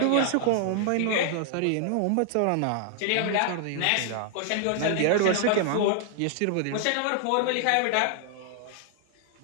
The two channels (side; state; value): both; different; correlation -0.01